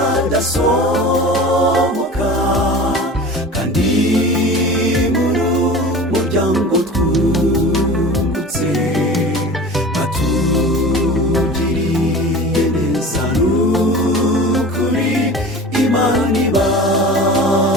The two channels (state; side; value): normal; both; correlation 0.37